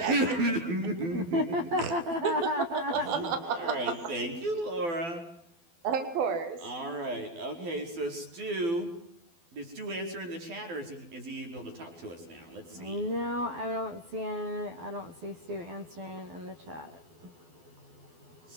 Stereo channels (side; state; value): left; late; 12 ms